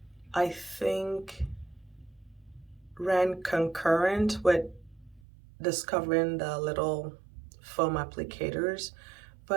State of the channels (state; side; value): drops out; left; at 5.2 s